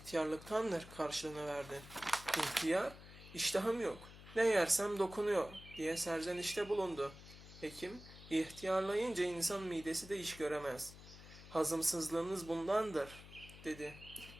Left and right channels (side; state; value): left; noise; hum, 17 dB below the sound